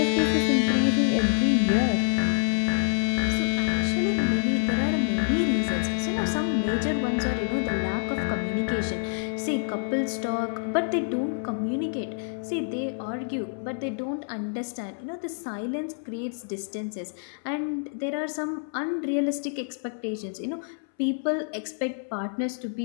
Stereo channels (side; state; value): right; silent; 60 dB below the other